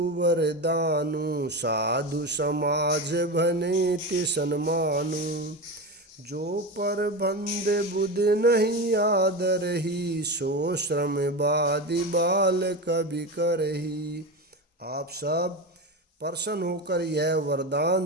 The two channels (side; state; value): both; normal; correlation 0.21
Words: वरदानु, साधु समाज भनेति सन्मानु। जो पर बंद बुध नहीं आदर ही, सो श्रम बादि बाल कवि करही। आप सब प्रसन्न होकर यह